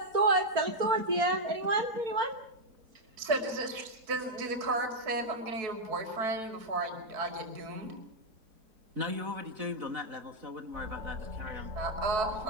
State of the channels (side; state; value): left; late; 4.6 ms